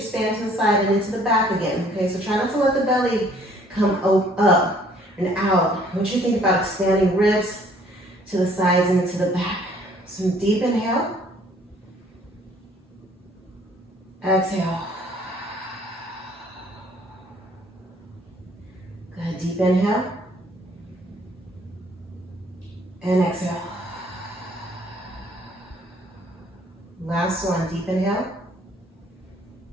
to the side and into the back again. Okay, so try not to let the belly come up and out. I want you to think about expanding ribs to the sides and into the back. Some deep inhale. Exhale. Good, deep inhale. And exhale. Last one, deep inhale.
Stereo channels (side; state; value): both; normal; correlation 0.60